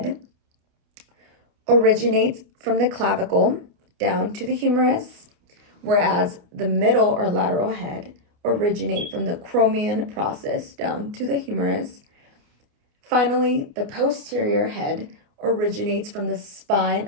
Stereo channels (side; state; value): left; late; 29 ms